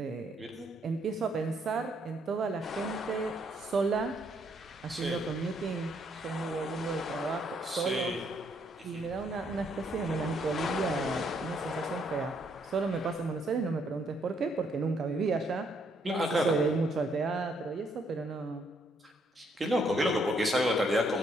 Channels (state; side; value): normal; both; correlation 0.71